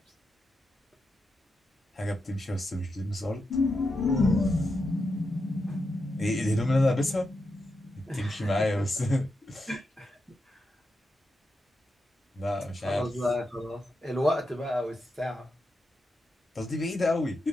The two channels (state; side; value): normal; both; correlation 0.86